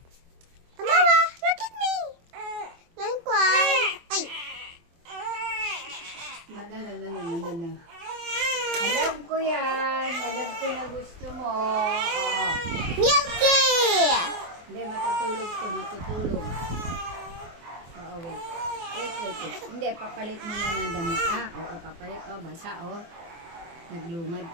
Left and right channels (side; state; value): left; late; 24 ms